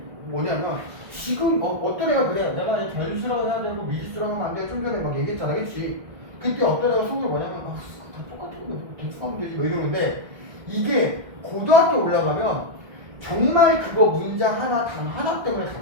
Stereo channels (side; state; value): left; late; 1.6 ms